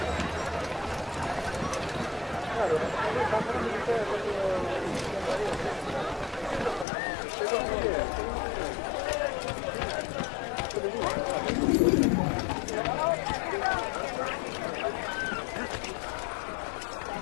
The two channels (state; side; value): drops out; right; at 6.9 s